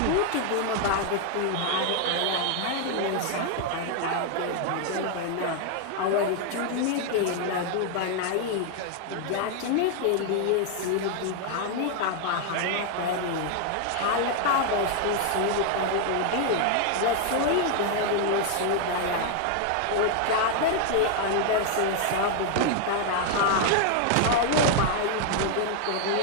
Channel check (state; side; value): different; both; correlation 0.00